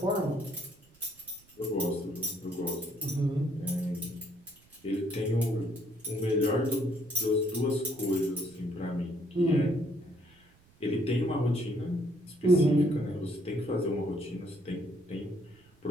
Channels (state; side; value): noise; right; rumble, 30 dB below the sound